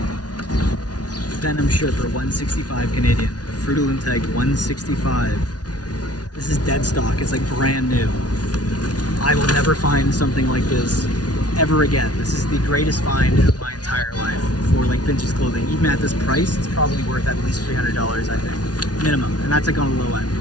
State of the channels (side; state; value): right; late; 0.69 ms